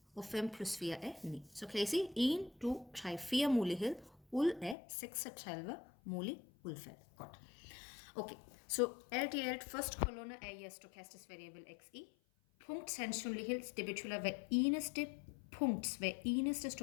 Og 5 plus 4 er 9. Så kan I se 1, 2, 3, 4 muligheder ud af 36 mulige udfald. Godt. Okay, så alt i alt, første kolonne er jeres stochastisk variable xi. Punktsandsynlighed, det betyder hver eneste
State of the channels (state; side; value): drops out; right; at 4.8 s